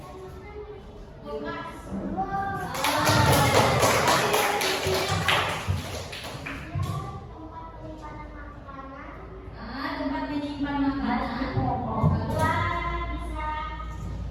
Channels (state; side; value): identical; both; correlation 1.00